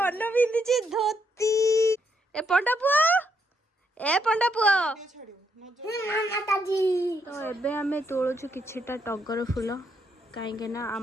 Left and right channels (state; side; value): normal; both; correlation 0.76